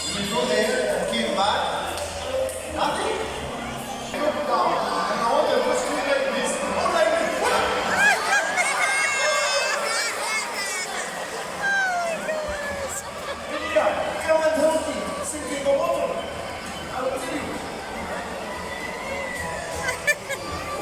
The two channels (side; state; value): both; identical; correlation 1.00